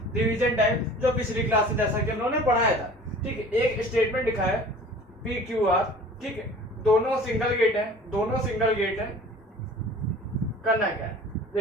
रिवीजन टाइप जो पिछली क्लास में जैसा कि हम लोगों ने पढ़ाया था। ठीक है, एक स्टेटमेंट लिखा है पी क्यू आर, ठीक है, दोनों सिंगल गेट है। करना क्या है,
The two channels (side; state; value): both; normal; correlation 0.45